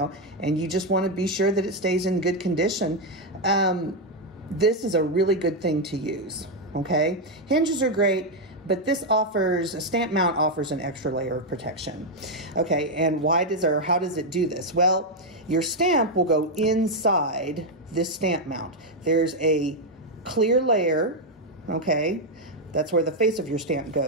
and you just want to be sure that it stays in good condition, this is a really good thing to use, okay? Hinges are great, but this offers, a stamp mount offers an extra layer of protection. Okay, and how does it do this? Well, your stamp will go inside this stamp mount. There's a clear layer, okay? That's where the face of your stamp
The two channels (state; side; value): normal; both; correlation 0.02